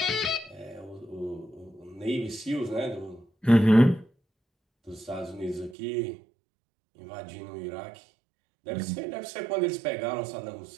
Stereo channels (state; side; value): drops out; left; at 5.8 s